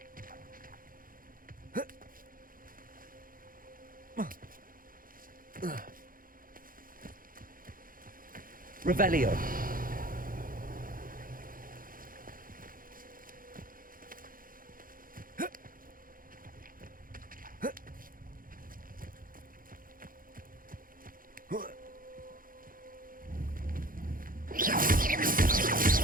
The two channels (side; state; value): left; late; 0.41 ms